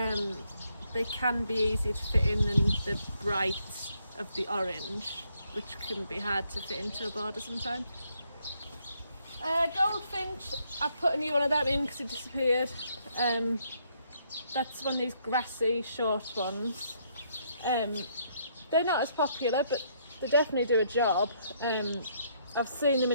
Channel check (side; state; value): both; inverted; correlation -0.71